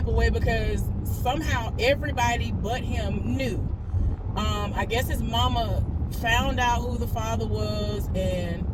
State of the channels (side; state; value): both; identical; correlation 1.00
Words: of way because somehow everybody but him knew. I guess his mama found out who the father was, and